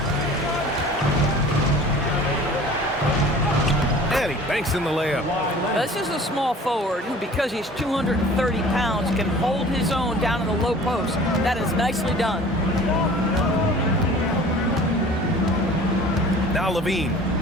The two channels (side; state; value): both; normal; correlation 0.45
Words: And he banks in the layup. This is a small forward who, because he's 230 pounds, can hold his own down in the low post. That is nicely done. Now Levine.